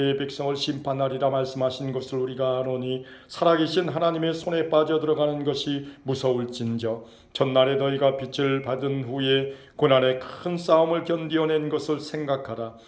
백성을 심판하리라 말씀하신 것을 우리가 아노니 살아계신 하나님의 손에 빠져들어가는 것이 무서울진저 전날에 너희가 빛을 받은 후에 고난의 큰 싸움을 견디어낸 것을 생각하라.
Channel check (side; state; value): both; identical; correlation 1.00